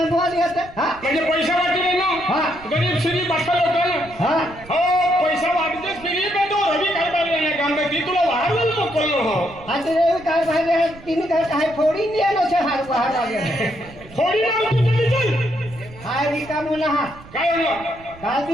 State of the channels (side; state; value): right; noise; rumble, 20 dB below the sound